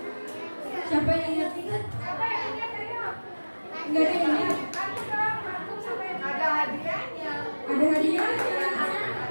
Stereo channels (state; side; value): inverted; both; correlation -1.00